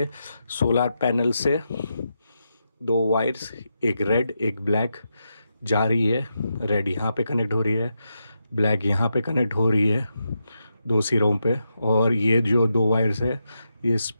सोलर पैनल से 2 वायर्स, एक रेड एक ब्लैक जा रही है। रेड यहाँ पे कनेक्ट हो रही है, ब्लैक यहाँ पे कनेक्ट हो रही है 2 सिरों पे। और ये जो 2 वायर्स है ये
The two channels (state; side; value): inverted; both; correlation -0.86